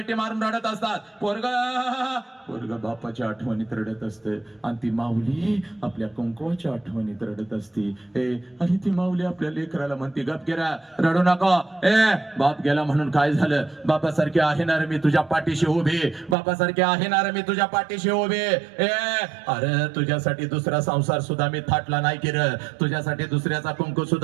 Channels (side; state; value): left; drops out; at 16.4 s